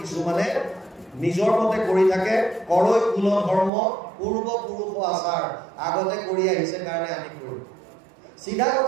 কিছুমানে নিজৰ মতে কৰি থাকে, কৰৈ কুল ধৰ্ম পূৰ্বপুৰুষ আচাৰ, আগতে কৰি আহিছে কাৰণে আমি কৰিম। চিধা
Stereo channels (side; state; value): left; drops out; at 3.7 s